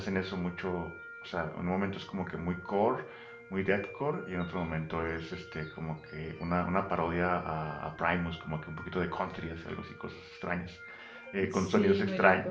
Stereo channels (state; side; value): identical; both; correlation 1.00